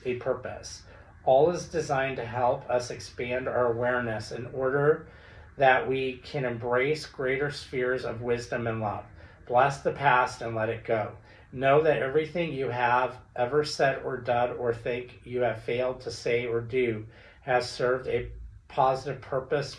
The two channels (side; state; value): both; identical; correlation 1.00